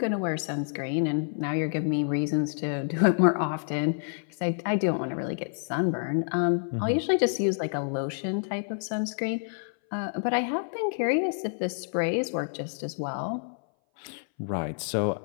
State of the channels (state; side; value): silent; right; 58 dB below the other